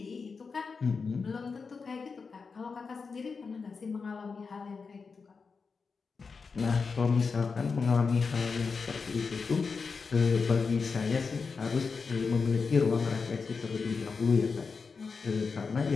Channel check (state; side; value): quieter; right; 5.0 dB